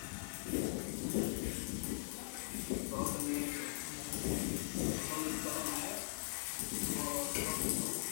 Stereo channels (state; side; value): silent; right; 50 dB below the other